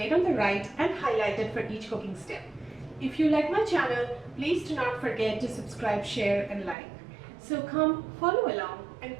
on the right and highlighted for each cooking step. If you like my channel, please do not forget to subscribe, share and like. So come follow along and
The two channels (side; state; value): left; drops out; at 6.8 s